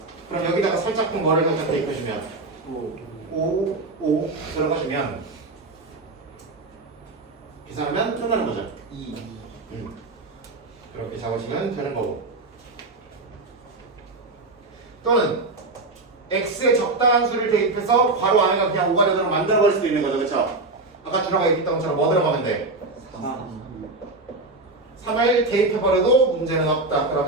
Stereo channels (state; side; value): quieter; left; 3.3 dB